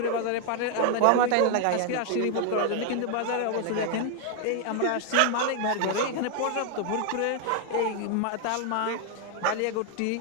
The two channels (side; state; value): both; different; correlation 0.00